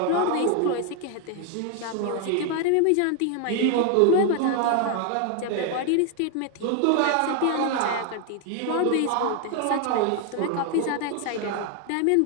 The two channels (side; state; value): both; different; correlation 0.01